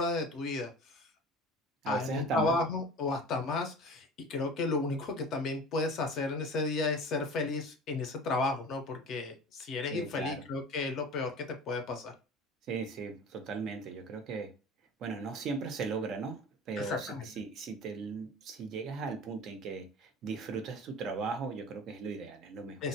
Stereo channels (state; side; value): normal; both; correlation 0.38